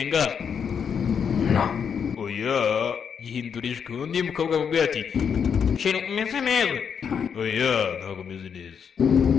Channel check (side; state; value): right; quieter; 7.1 dB